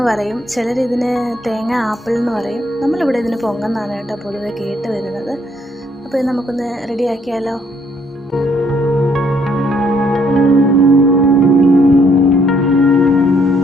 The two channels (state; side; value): normal; both; correlation 0.68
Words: പറയും, ചിലരിതിന് തേങ്ങ ആപ്പിൾ എന്ന് പറയും. നമ്മളിവിടെ ഇതിന് പൊങ്ങെന്നാണ് പൊതുവെ കേട്ട് വരുന്നത്. അപ്പോൾ ഇത് നമുക്കൊന്ന് റെഡിയാക്കിയാലോ?